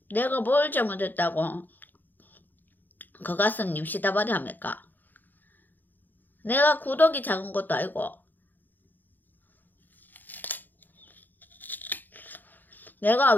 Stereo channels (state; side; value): late; right; 0.087 ms